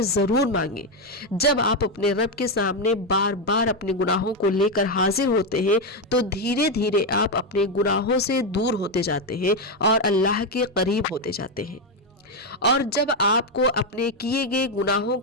ज़रूर मांगे। जब आप अपने रब के सामने बार बार अपने गुनाहों को लेकर हाजिर होते हैं, तो धीरे धीरे आप अपने गुनाहों से दूर होते जाते हैं और अल्लाह के करीब होते जाते हैं। और जब आपको अपने किए गए गुनाहों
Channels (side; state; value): both; normal; correlation 0.06